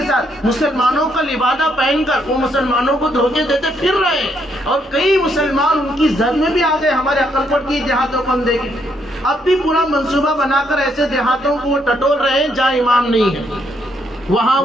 ساتھ مسلمانوں کا لبادہ پہن کر وہ مسلمانوں کو دھوکے دیتے پھر رہے ہیں، اور کئی مسلمان ان کی زد میں بھی آ گئے۔ ہمارے عقل کوٹ کی دیہاتوں کو ہم دیکھیں، اب بھی پورا منصوبہ بنا کر ایسے دیہاتوں کو وہ ٹٹول رہے ہیں جہاں امام نہیں ہے، وہاں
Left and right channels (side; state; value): both; normal; correlation 0.74